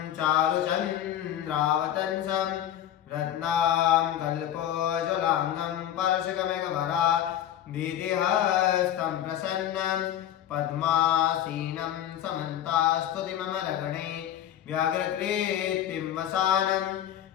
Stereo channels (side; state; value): right; quieter; 11.2 dB